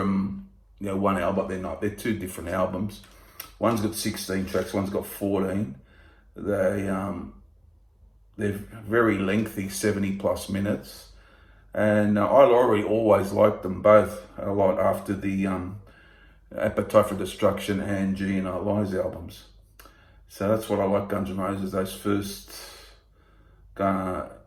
one album, but they're not. They're two different albums. One's got 16 tracks, one's got 14. They're very lengthy, 70 plus minutes. And I always liked them both a lot after the Appetite for Destruction and GNR Lies albums. So that's what I like Guns N' Roses, those first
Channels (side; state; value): both; identical; correlation 1.00